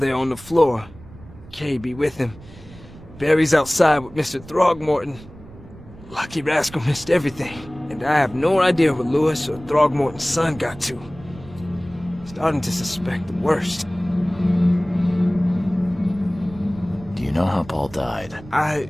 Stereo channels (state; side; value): noise; right; rumble, 19 dB below the sound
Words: on the floor. Kay be with him. Barry's outside with Mr. Throgmorton. Lucky rascal missed everything, and I have no idea where Lewis or Throgmorton's son got to. Starting to suspect the worst. Do you know how Paul died? I